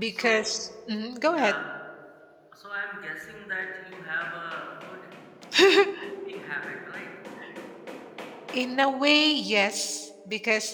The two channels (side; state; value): both; identical; correlation 1.00